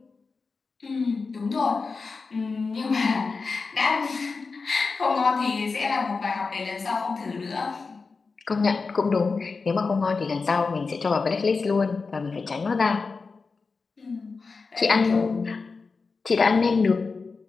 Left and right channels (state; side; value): quieter; right; 4.5 dB